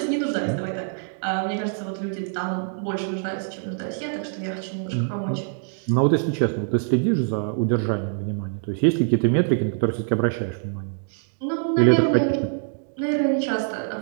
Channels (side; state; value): left; silent; 58 dB below the other